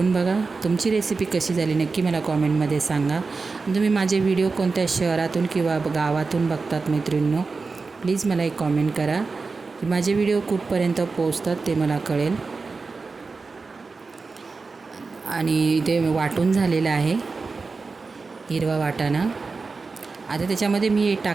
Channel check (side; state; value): left; quieter; 4.2 dB